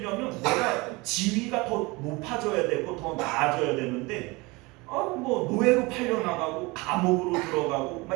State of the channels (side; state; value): left; quieter; 24.5 dB